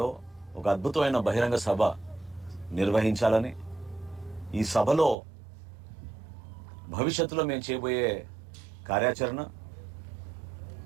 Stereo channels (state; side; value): drops out; left; at 5.2 s